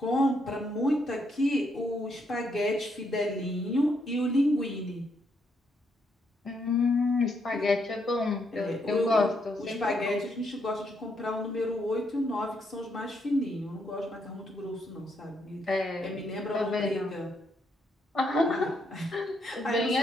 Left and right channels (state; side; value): normal; both; correlation 0.76